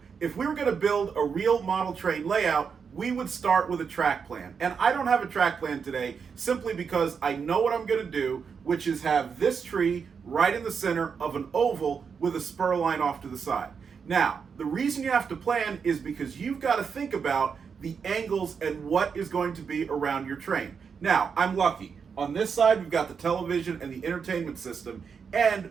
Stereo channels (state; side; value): quieter; left; 6.2 dB